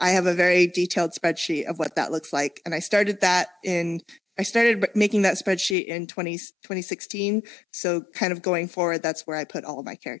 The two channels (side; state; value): right; drops out; at 5.8 s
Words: I have a very detailed spreadsheet of what that looks like. And I started making that spreadsheet in 2016. So kind of going forward, that's where I put all of my